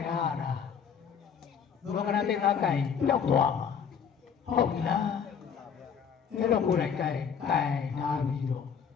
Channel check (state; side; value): quieter; right; 7.1 dB